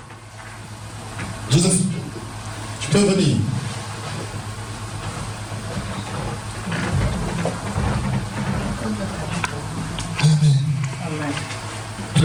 Joseph, tu peux venir. Amen.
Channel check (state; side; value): identical; both; correlation 1.00